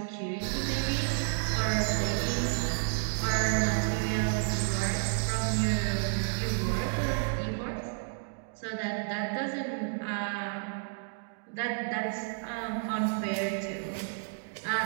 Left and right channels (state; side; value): silent; left; digital silence